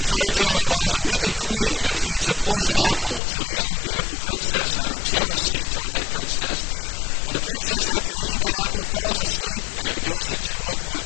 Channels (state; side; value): drops out; right; at 3.2 s